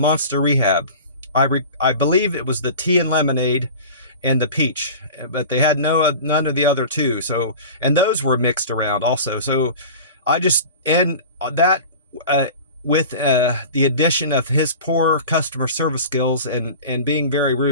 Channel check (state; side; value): inverted; both; correlation -0.36